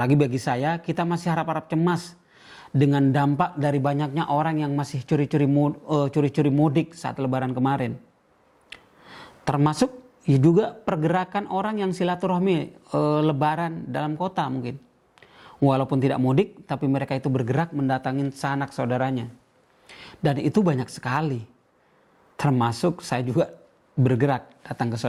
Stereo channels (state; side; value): identical; both; correlation 1.00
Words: bagi saya, kita masih harap-harap cemas dengan dampak dari banyaknya orang yang masih curi-curi mudik saat lebaran kemarin. Termasuk ya juga pergerakan orang yang silaturahmi lebaran dalam kota mungkin. Walaupun tidak mudik, tapi mereka itu bergerak mendatangin sanak saudaranya. Dan itu banyak sekali. Termasuk saya juga bergerak datang ke